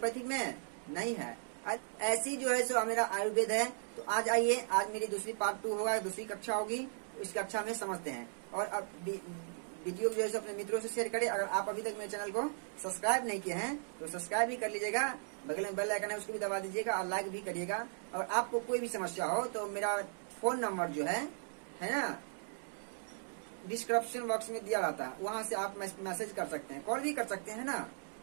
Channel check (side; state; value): left; silent; digital silence